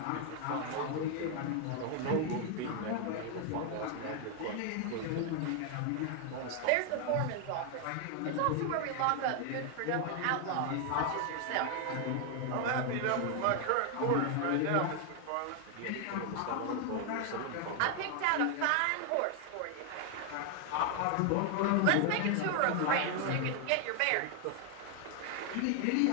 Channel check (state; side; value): different; both; correlation 0.00